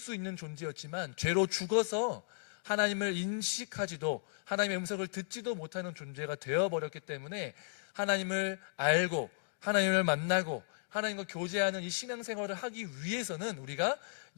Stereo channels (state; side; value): silent; right; digital silence